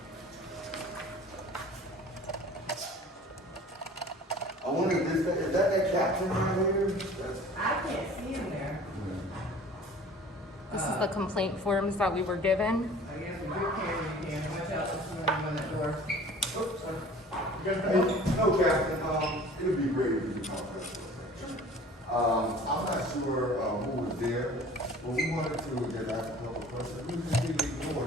I wonder if this, is that captain right here? I can't see him there. This is the complaint forms that we were given. I guess with your camera, you can. Watch out, this morning on that door. Oops, sorry. Hey, no, Captain, it'd be great if you could talk to us for a second. I'm not sure, who was there, but we wanted to just ask a couple of questions. We just didn't ignore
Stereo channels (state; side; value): normal; both; correlation 0.46